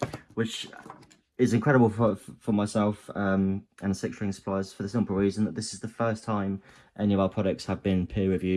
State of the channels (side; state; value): both; identical; correlation 1.00